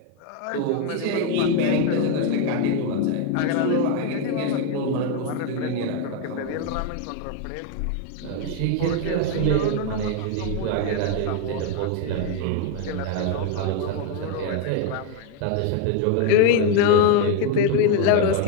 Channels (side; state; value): both; different; correlation 0.01